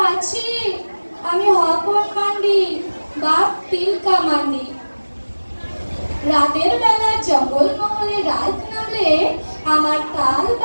আছি, আমি হপন মান্ডি, বাপ তিলকা মান্ডি। রাতের বেলা জঙ্গল মহলে রাত নামলে আমার তাল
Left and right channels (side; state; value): both; inverted; correlation -1.00